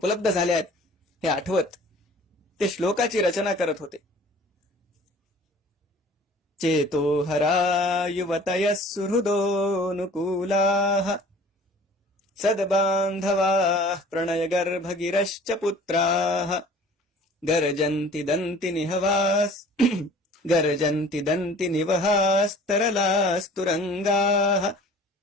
झाल्या आहेत हे आठवत ते श्लोकाची रचना करत होते. चेतो हरा युवतयः सुहृदोऽनुकूलाः सद्बान्धवाः प्रणयगर्भगिरश्च पुत्राः गर्जन्ति दन्ति निवहास्तरलास्तुरंगाः.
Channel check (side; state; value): both; normal; correlation 0.48